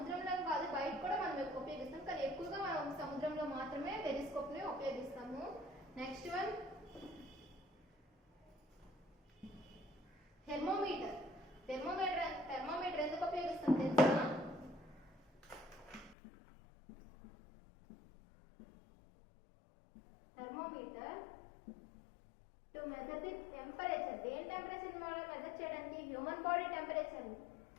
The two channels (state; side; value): drops out; right; at 16.2 s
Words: కాదు, బయట కూడా మనం ఉపయోగిస్తాం, కానీ ఎక్కువగా మనం సముద్రంలో మాత్రమే పెరిస్కోప్ ని ఉపయోగిస్తాము. Next one thermometer. థెర్మోమీటర్ ఎందుకు ఉపయోగిస్తాం తెలుసా? Thermometer to measure the temperature. దేని టెంపరేచర్ మెజర్ చేయడానికి? Human body temperature